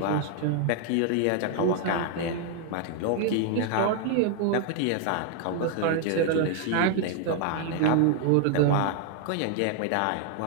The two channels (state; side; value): different; both; correlation 0.00